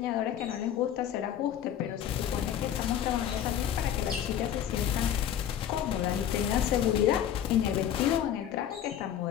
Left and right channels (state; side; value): quieter; right; 10.1 dB